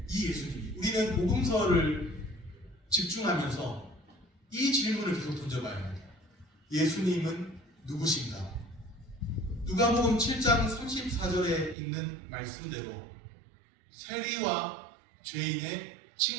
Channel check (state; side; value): drops out; left; at 11.8 s